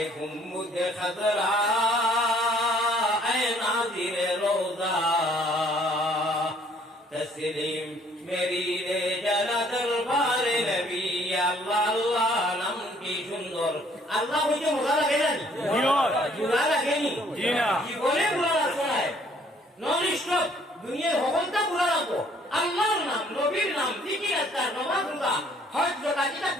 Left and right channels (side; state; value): both; normal; correlation 0.61